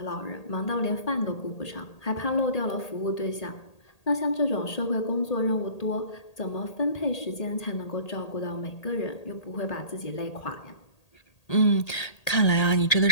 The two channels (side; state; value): right; late; 1.8 ms